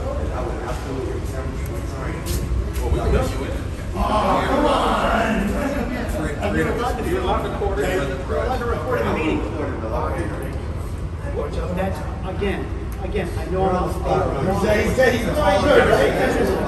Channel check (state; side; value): identical; both; correlation 1.00